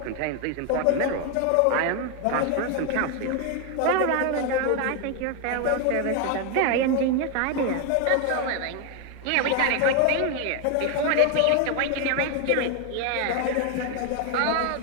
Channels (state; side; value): different; both; correlation 0.01